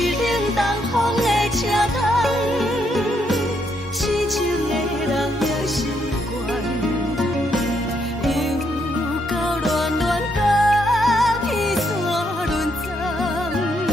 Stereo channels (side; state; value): both; normal; correlation 0.75